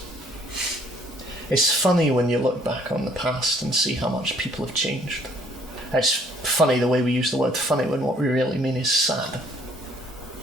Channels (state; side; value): normal; both; correlation 0.62